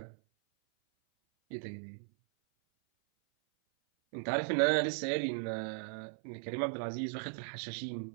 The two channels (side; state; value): left; silent; 53 dB below the other